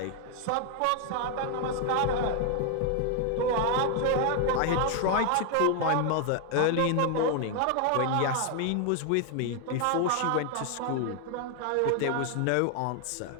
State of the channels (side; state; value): both; different; correlation 0.00